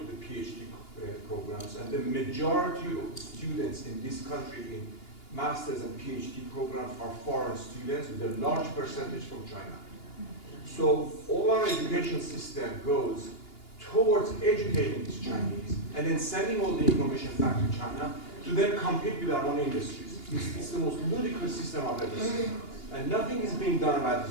the PhD programs, and the majority of students in this country in master's and PhD programs are foreign students, with a large percentage from China. So all our education system goes towards educating these Chinese and then sending all the information back to China to then compete with our own industries. It's the most ludicrous system I've ever seen. And nothing is being done about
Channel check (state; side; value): late; right; 2.8 ms